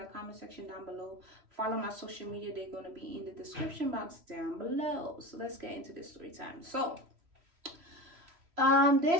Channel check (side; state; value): left; late; 3.0 ms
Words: comment section down below. Follow my social media. They're going to be in the description box down below. So let's get into this story time. So